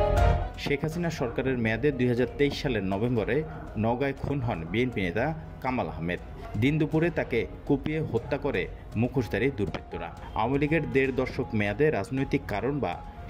শেখ হাসিনা সরকারের মেয়াদে ২০২৩ সালের নভেম্বরে নওগাঁয় খুন হন বিএনপি নেতা কামাল আহমেদ। দিন দুপুরে তাকে কুপিয়ে হত্যা করে মুখোশধারী দুর্বৃত্তরা। আওয়ামী লীগের ১.৫ দশক মেয়াদে রাজনৈতিক কারণ বা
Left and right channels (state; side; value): identical; both; correlation 1.00